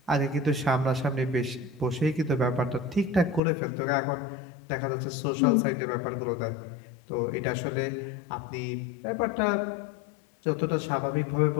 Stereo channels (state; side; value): drops out; right; at 3.4 s